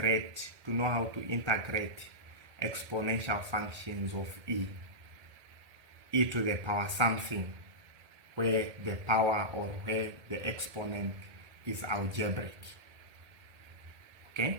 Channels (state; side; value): late; left; 1.8 ms